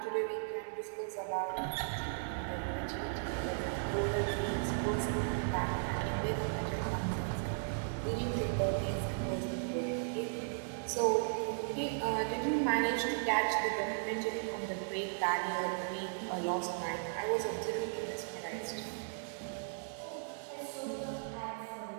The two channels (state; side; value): silent; left; digital silence